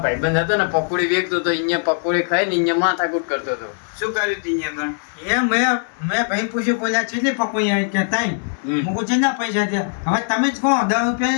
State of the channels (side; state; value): right; silent; digital silence